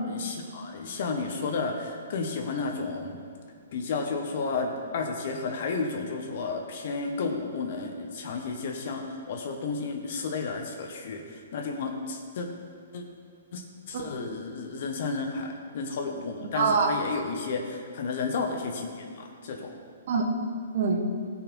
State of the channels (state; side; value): inverted; both; correlation -0.46